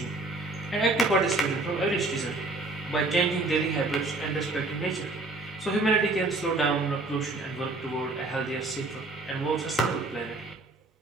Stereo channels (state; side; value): quieter; left; 3.1 dB